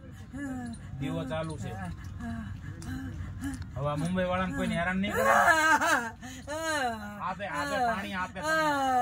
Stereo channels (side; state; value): both; identical; correlation 1.00